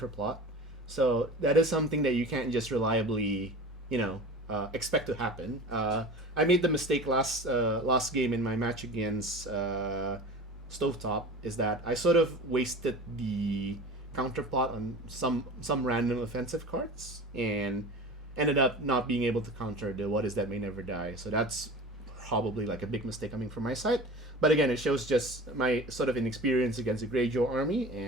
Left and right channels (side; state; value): both; normal; correlation 0.36